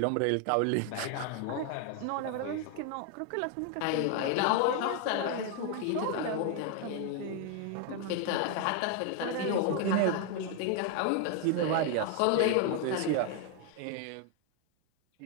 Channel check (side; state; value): both; different; correlation 0.01